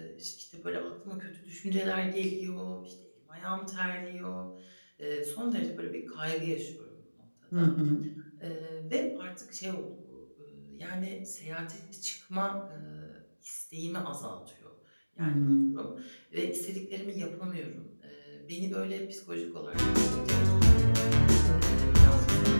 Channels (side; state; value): both; inverted; correlation -1.00